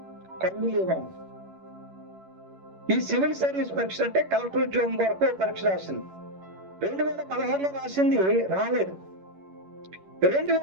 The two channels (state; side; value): late; left; 11 ms